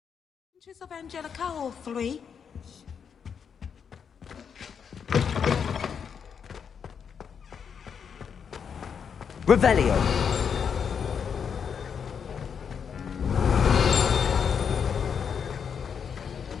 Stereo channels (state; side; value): quieter; right; 7.0 dB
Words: Of Angelica, all three. Revelio.